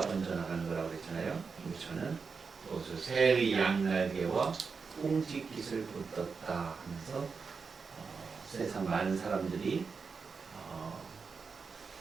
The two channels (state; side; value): quieter; left; 5.1 dB